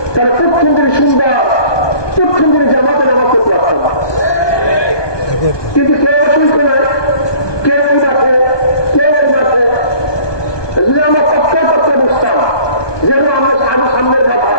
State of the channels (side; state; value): right; late; 1.2 ms